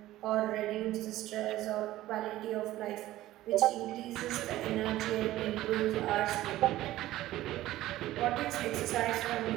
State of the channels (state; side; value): quieter; left; 15.4 dB